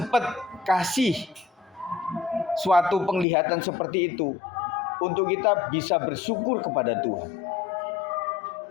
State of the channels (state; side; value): drops out; right; at 3.2 s